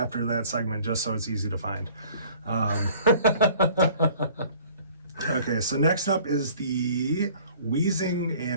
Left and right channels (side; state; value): both; inverted; correlation -0.51